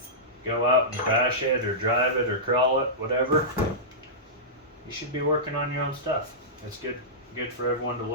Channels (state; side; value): normal; both; correlation -0.15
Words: go out and bash it or drive it or crawl it, whatever, you should be working on your own stuff. It's good for everyone to